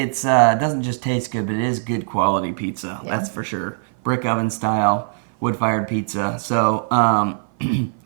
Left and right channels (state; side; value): silent; left; 56 dB below the other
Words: doesn't just taste good, but it is good quality pizza. Yeah. That's for sure. Brick oven style, wood-fired pizza. So